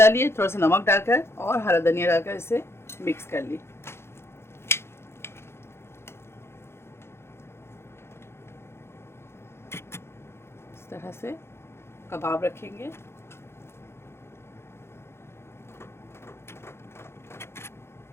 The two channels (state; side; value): late; right; 0.12 ms